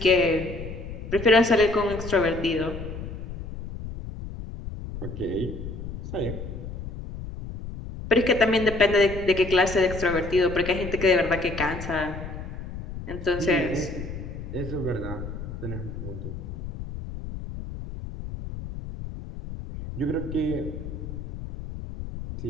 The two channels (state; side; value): noise; left; rumble, 9 dB below the sound